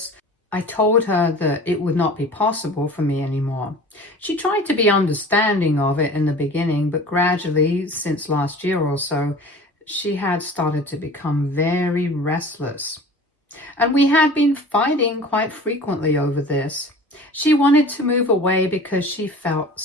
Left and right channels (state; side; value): normal; both; correlation 0.42